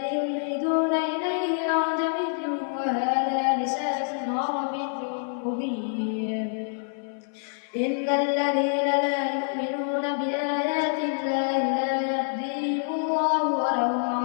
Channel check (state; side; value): silent; right; 58 dB below the other